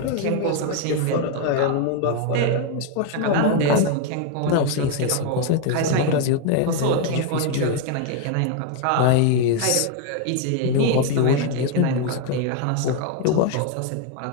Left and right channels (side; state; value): both; different; correlation 0.01